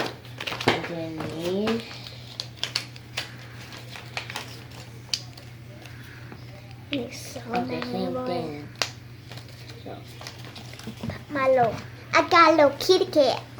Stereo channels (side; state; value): both; identical; correlation 1.00